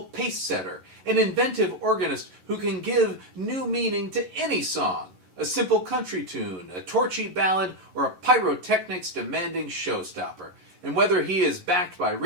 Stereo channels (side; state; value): left; late; 11 ms